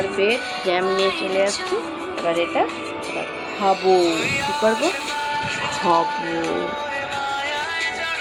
বেড জ্যাম নিয়ে চলে আসছি। এবার এটা খাবো, কি করবো, খাবো।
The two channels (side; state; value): both; identical; correlation 1.00